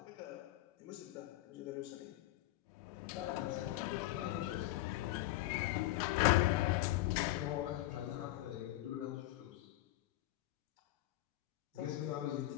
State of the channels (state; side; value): quieter; right; 16.8 dB